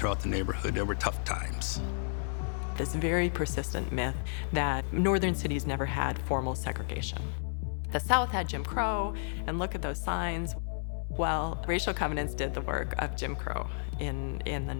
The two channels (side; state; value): right; silent; 56 dB below the other